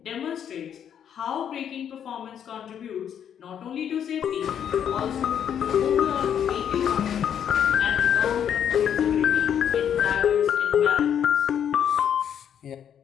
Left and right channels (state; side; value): quieter; right; 8.9 dB